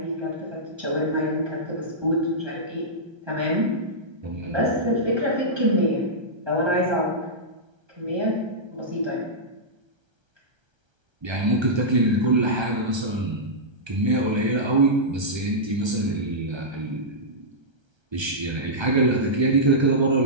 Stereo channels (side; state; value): left; late; 1.3 ms